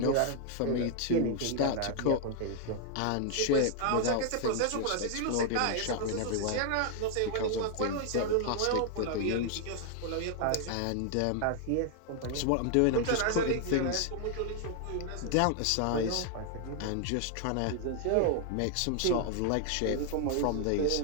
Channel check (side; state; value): both; different; correlation 0.00